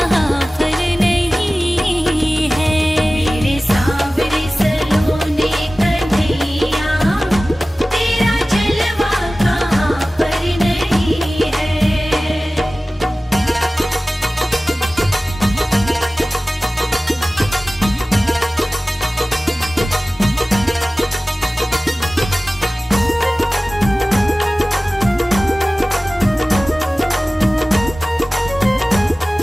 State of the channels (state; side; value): normal; both; correlation 0.97